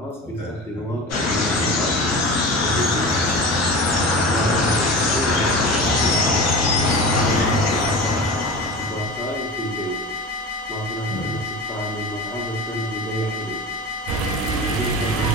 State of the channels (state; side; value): normal; both; correlation 0.31